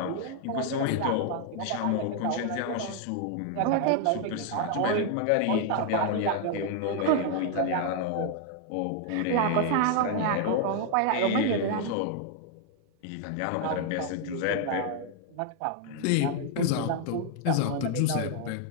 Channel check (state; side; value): different; both; correlation 0.00